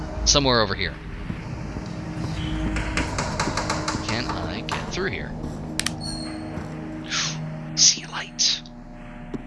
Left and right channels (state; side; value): identical; both; correlation 1.00